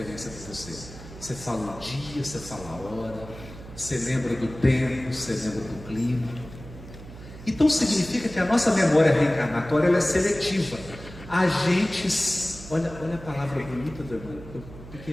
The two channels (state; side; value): noise; right; hum, 15 dB below the sound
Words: para você? Você fala o dia, você fala a hora, você lembra do tempo, você lembra do clima. Então significa que a nossa memória reencarnatória ela é seletiva. A gente, olha a palavra bonita do irmão,